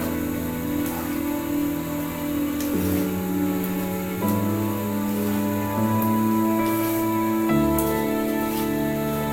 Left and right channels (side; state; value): both; identical; correlation 1.00